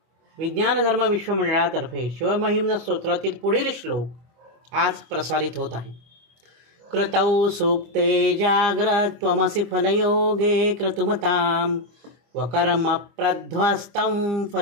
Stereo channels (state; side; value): late; left; 25 ms